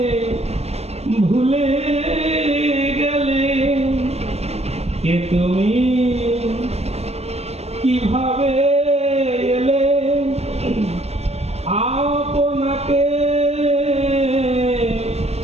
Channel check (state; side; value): late; left; 0.30 ms